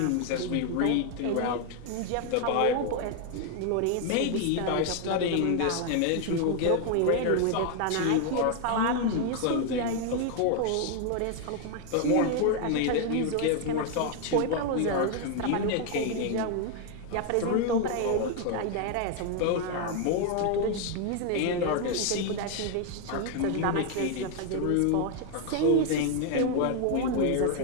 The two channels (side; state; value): both; different; correlation 0.00